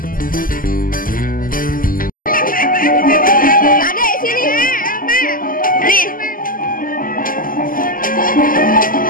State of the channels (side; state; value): right; late; 0.41 ms